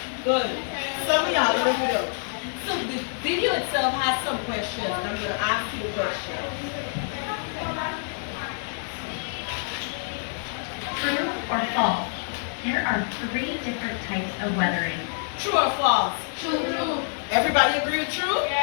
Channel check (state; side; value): silent; right; 61 dB below the other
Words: Good. Some of y'all don't do that. So the video itself has some questions. I'm going to ask you a question. True or false? There are 3 different types of weathering. True or false? True. Everybody agree with true?